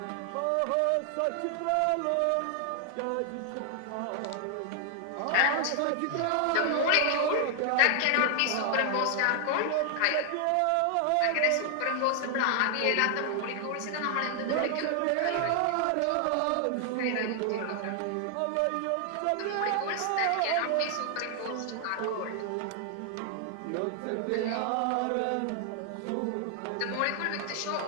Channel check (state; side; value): different; both; correlation 0.00